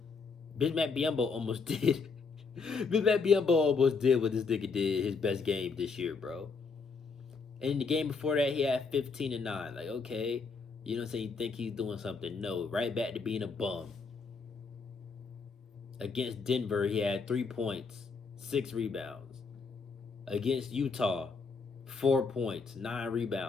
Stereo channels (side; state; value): right; quieter; 4.8 dB